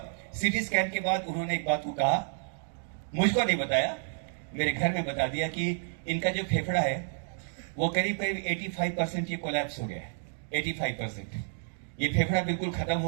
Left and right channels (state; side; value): silent; left; digital silence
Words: सीटी स्कैन के बाद उन्होंने एक बात को कहा, मुझको नहीं बताया, मेरे घर में बता दिया कि इनका जो फेफड़ा है वो करीब करीब 85% ये कोलैप्स हो गया है। 85% ये फेफड़ा बिल्कुल खत्म